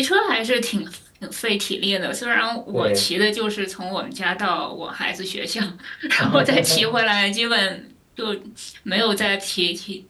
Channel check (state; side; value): identical; both; correlation 1.00